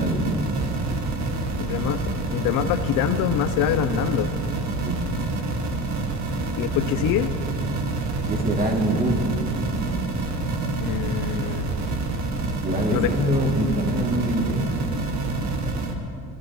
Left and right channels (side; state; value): both; normal; correlation 0.33